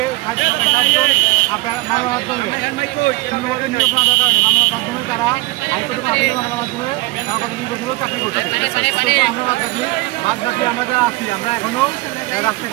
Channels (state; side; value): quieter; left; 21.2 dB